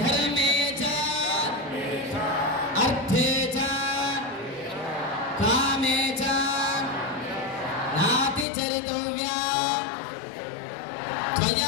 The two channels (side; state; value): right; drops out; at 8.5 s